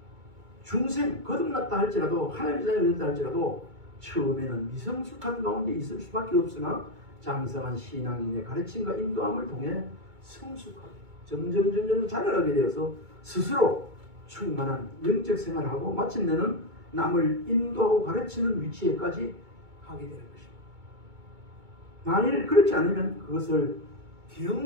중생 거듭났다 할지라도 하나님의 자녀가 됐다 할지라도 처음에는 미성숙한 가운데 있을 수밖에 없으나 장성한 신앙인의 가르침과 인도함을 통해 성숙하게 점점 자라나게 되어서 스스로 충만한 영적 생활을 하고 마침내는 남을 인도하고 가르치는 위치에까지 가게 되는 것입니다. 만일 그렇지 않으면 그것을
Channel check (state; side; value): late; left; 2.2 ms